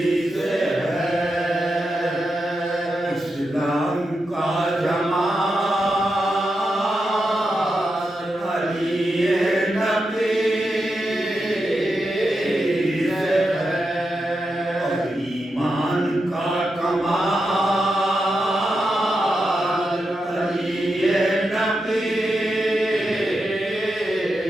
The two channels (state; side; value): normal; both; correlation 0.87